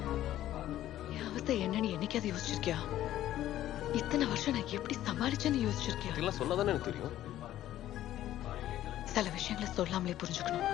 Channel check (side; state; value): right; quieter; 13.2 dB